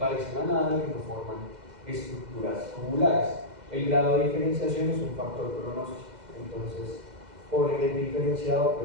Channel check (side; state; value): left; late; 2.0 ms